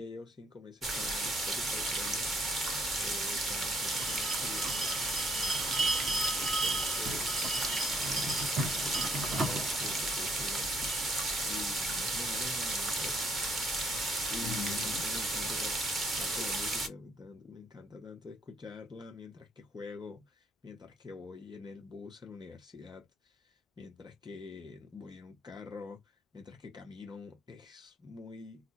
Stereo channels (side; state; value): both; normal; correlation 0.69